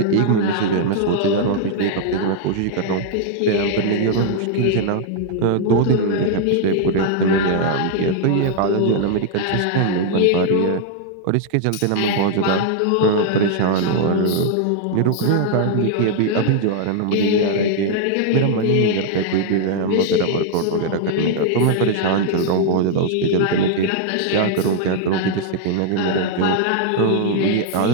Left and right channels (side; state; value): both; different; correlation 0.00